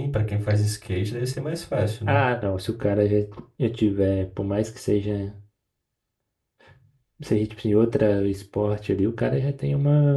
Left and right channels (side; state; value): both; identical; correlation 1.00